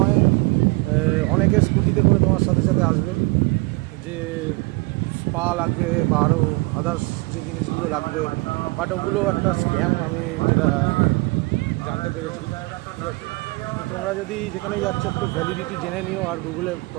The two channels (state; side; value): quieter; left; 26.0 dB